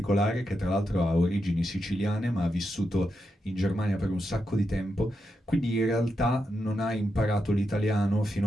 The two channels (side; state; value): both; normal; correlation 0.85